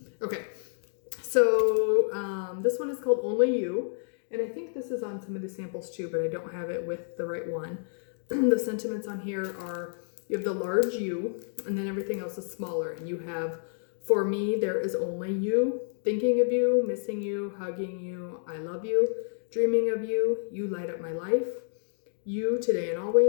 Okay, so this one is called Only You. And I think this is on some of the samples too, but I don't have it with the right one. The sentiments on here are, you have the large U, and then everything else is smaller. And you have For me, there is only you. Thinking of you, missing you, hugging you, I love you, dreaming of you, you light up my life. You today and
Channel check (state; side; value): silent; right; digital silence